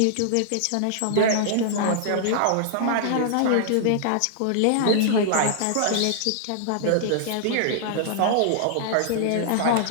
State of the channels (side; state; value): both; different; correlation -0.01